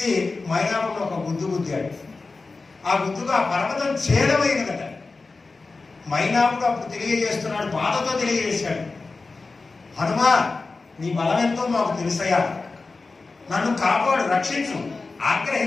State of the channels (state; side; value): quieter; right; 3.8 dB